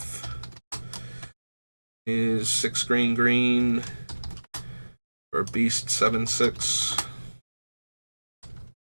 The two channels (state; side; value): inverted; both; correlation -1.00